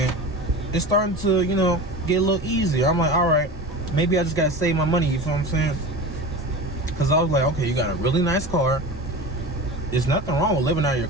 it's starting to, you know, get a little easier. I'm like, all right, maybe I just gotta save my money. You feel what I'm saying? Because I was like, okay, you got a really nice car. There's nothing wrong with living out of your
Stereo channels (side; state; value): both; normal; correlation 0.31